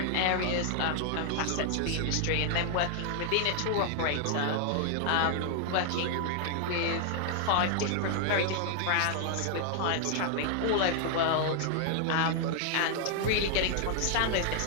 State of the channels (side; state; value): both; different; correlation 0.00